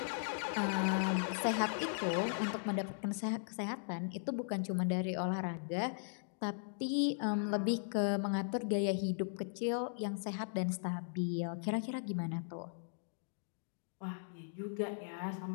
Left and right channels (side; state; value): right; silent; digital silence